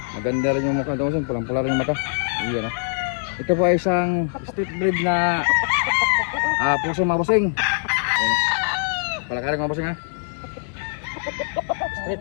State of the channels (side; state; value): right; silent; digital silence